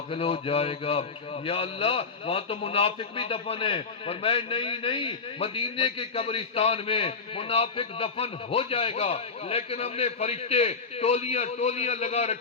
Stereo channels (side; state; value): right; quieter; 4.8 dB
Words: ہو جائے گا۔ یا اللہ وہاں تو منافق بھی دفن ہے، فرمایا نہیں، مدینے کے قبرستان میں منافق دفن ہو جائے گا، لیکن ہم نے فرشتے ٹولیاں لگا